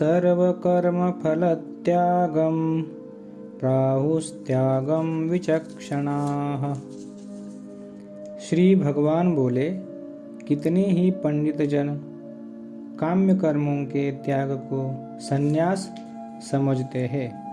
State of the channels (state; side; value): identical; both; correlation 1.00